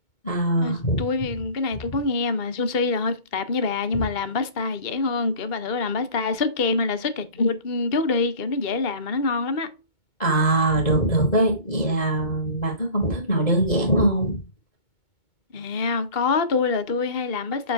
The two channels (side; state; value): right; late; 2.2 ms